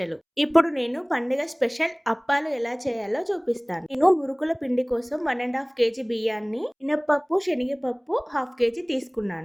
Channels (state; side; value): identical; both; correlation 1.00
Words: ఇప్పుడు నేను పండుగ స్పెషల్ అప్పాలు ఎలా చేయాలో చూపిస్తాను. నేను మురుకుల పిండి కోసం 1.5 కేజీ బియ్యాన్ని, మినప్పప్పు, శనగపప్పు 1/2 కేజీ